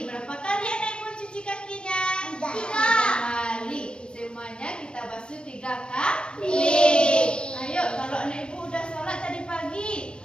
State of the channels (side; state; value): right; late; 0.052 ms